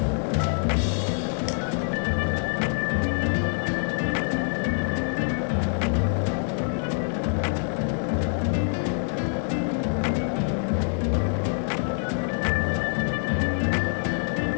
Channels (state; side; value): silent; right; 61 dB below the other